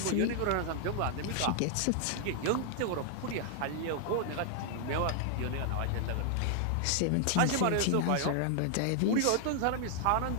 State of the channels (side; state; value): both; different; correlation 0.00